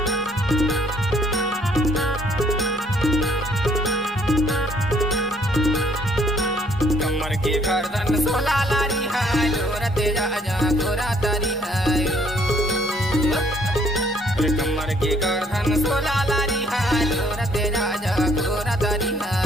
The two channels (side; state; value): both; normal; correlation 0.65